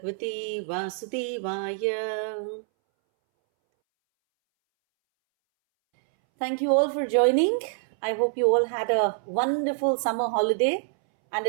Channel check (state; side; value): silent; left; 61 dB below the other